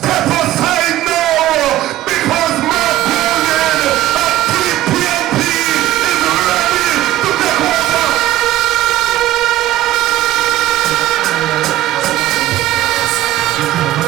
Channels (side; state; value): left; quieter; 14.5 dB